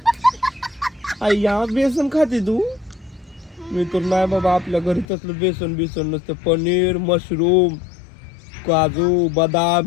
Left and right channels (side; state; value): right; drops out; at 5.1 s